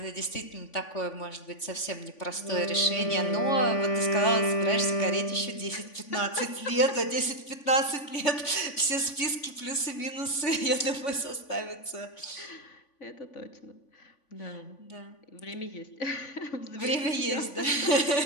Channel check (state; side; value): late; right; 3.5 ms